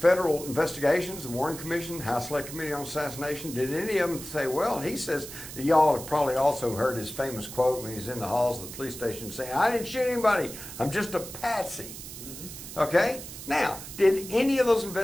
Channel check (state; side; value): noise; right; hiss, 12 dB below the sound